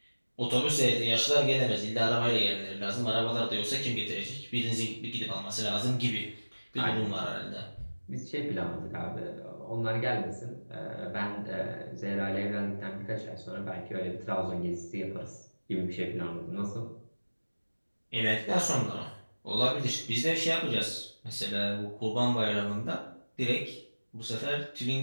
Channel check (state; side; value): inverted; both; correlation -1.00